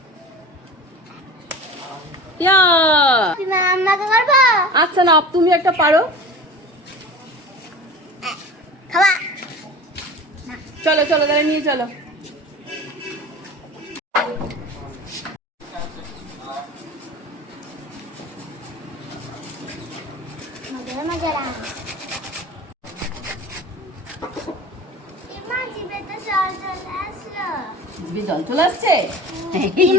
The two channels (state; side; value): normal; both; correlation 0.36